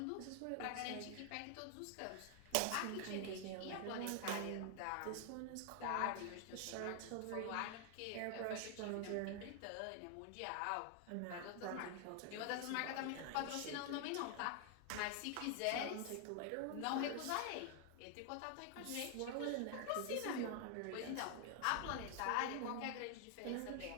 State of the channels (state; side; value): different; both; correlation 0.00